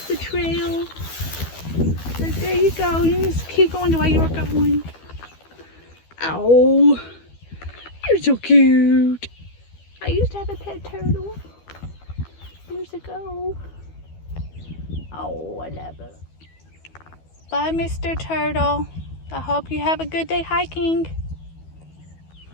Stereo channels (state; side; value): late; right; 12 ms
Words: the trail. So there you go. You just keep going the way you were going. Ow. You're so cute. I used to have a pet turtle years ago. Oh, I love it. Bye, Mr. Turtle. I hope you have a good day hiking.